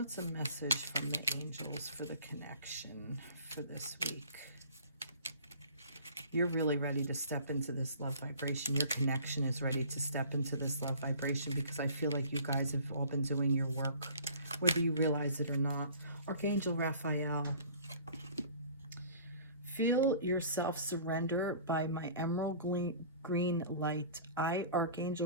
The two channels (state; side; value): inverted; both; correlation -0.47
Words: a message from the angels for the connection for this week? You're really ready to step into this love vibration. Your connection is ready to step into this love vibration because I feel like you guys have all been doing your work, whether you realize it or not. Archangel Raphael. Feel yourself surrender by my emerald green light. I,